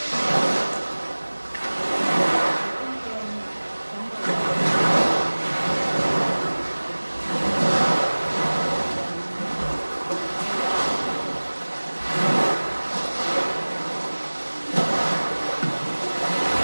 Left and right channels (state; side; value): inverted; both; correlation -1.00